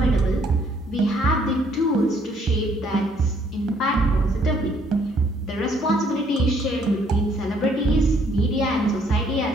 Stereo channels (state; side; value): normal; both; correlation 0.65